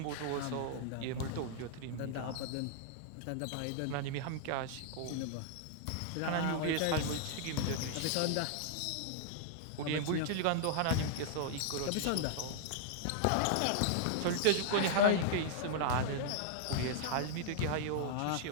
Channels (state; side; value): different; both; correlation -0.01